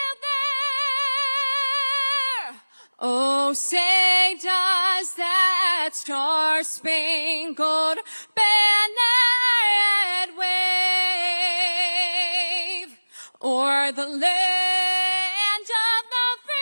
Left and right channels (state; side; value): inverted; both; correlation -1.00